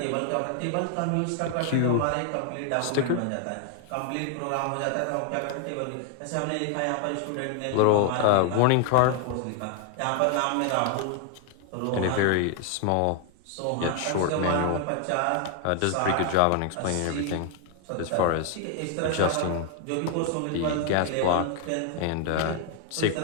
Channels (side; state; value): both; different; correlation 0.00